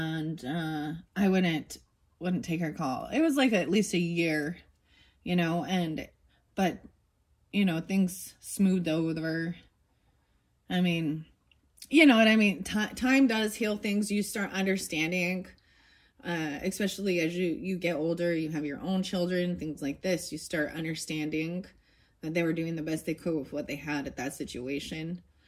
I wouldn't take her call. It was like at least a year, you know, but you know, things smoothed over. I mean, you know what I mean? Time does heal things. You start understanding, especially as you get older, you have your own children, things like this. You start understanding that they were doing the best they could with what they had at that situation.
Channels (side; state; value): both; identical; correlation 1.00